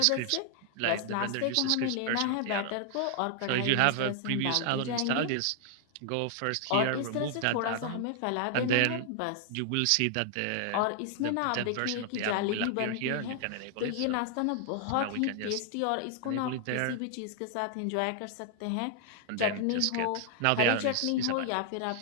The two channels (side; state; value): both; different; correlation 0.00